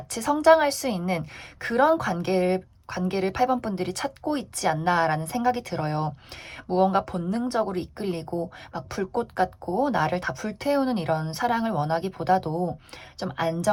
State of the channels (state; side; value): identical; both; correlation 1.00